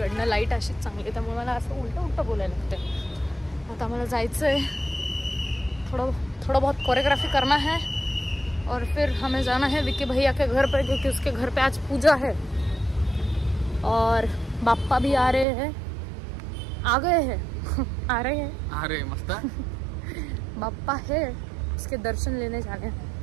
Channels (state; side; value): drops out; left; at 15.5 s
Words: लाईट अशीच चांगली त्यामुळे मला असं उलटं बोलायला लागतं. आता मला जायचं आहे, थोड़ा बहुत कोरियोग्राफी करना है और फिर हमें जाना है विक्की भैया के घर पर, क्योंकि उसके घर पे आज पूजा है और बाप्पा भी आ रहे हैं, आ गए हैं आ रहे मस्त बाप्पा है, उसके दर्शन लेने जाणे.